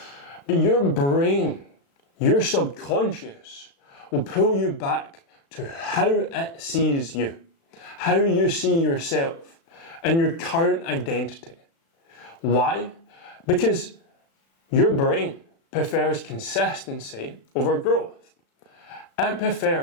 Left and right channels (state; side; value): late; right; 36 ms